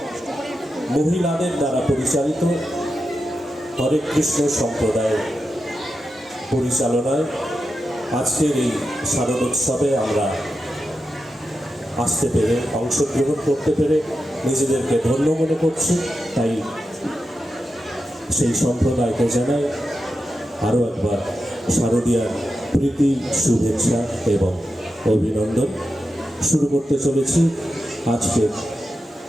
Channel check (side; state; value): both; normal; correlation 0.89